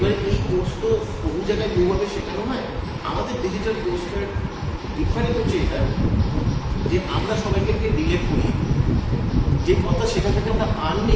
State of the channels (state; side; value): identical; both; correlation 1.00